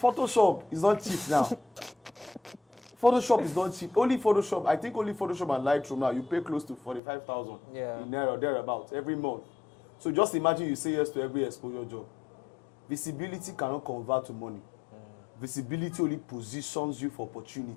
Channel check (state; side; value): drops out; right; at 7.0 s